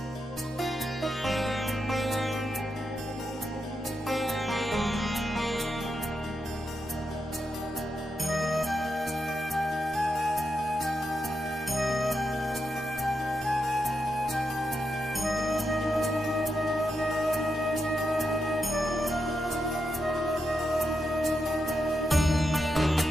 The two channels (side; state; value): both; normal; correlation 0.85